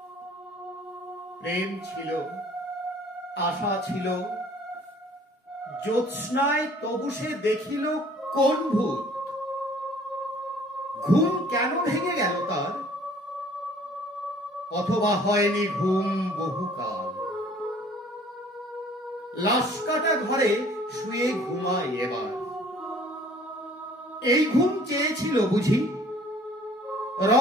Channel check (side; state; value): both; normal; correlation 0.54